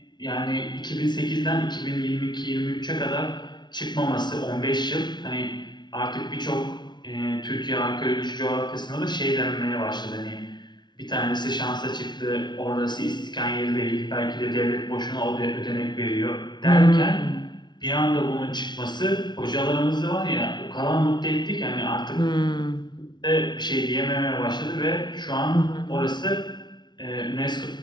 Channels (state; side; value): late; right; 0.21 ms